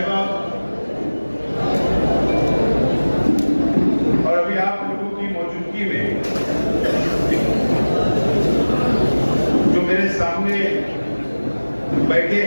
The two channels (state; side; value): inverted; both; correlation -1.00